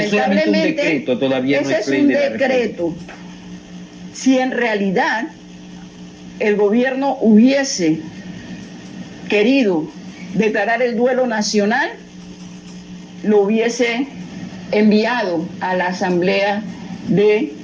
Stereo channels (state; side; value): identical; both; correlation 1.00